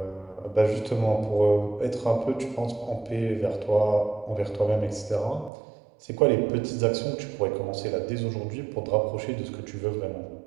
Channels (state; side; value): drops out; left; at 5.5 s